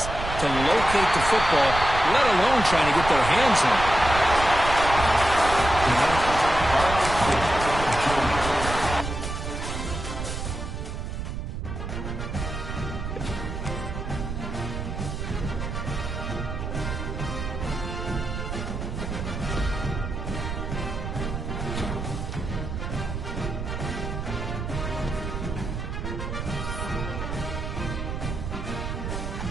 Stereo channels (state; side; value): noise; right; rumble, 5 dB below the sound